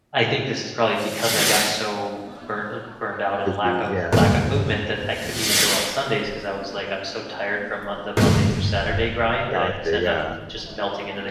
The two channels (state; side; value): identical; both; correlation 1.00